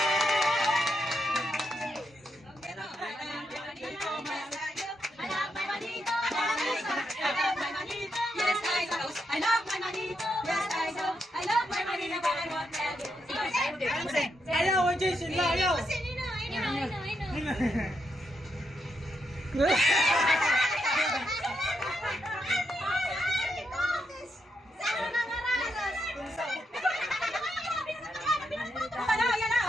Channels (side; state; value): both; normal; correlation 0.82